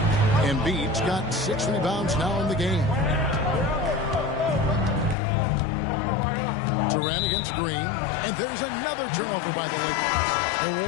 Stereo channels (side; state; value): right; drops out; at 5.2 s